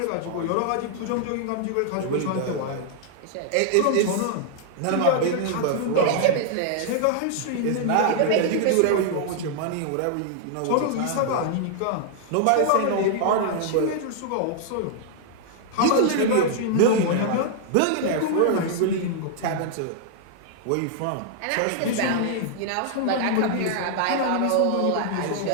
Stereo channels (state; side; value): different; both; correlation -0.01